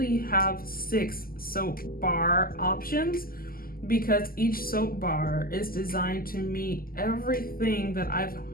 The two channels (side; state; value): right; late; 0.42 ms